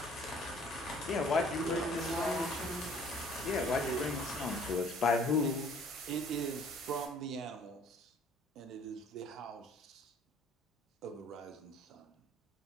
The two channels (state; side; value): normal; both; correlation 0.55